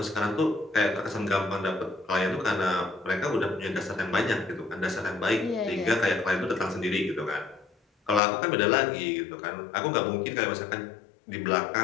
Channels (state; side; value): drops out; right; at 8.2 s